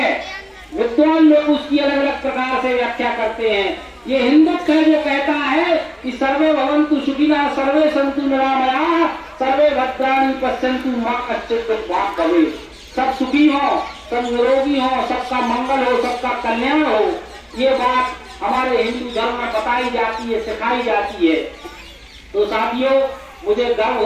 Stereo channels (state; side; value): identical; both; correlation 1.00